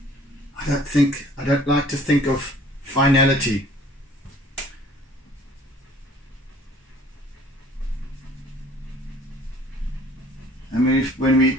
I don't like to think of finality. I mean, when we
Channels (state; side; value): normal; both; correlation 0.53